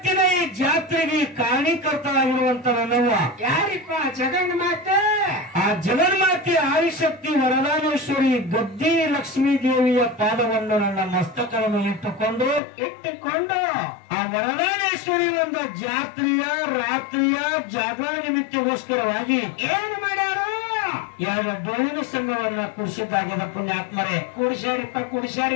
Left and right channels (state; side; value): drops out; right; at 12.6 s